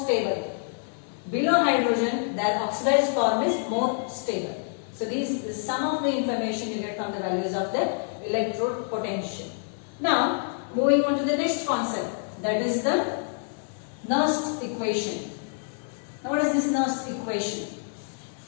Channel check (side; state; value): right; silent; digital silence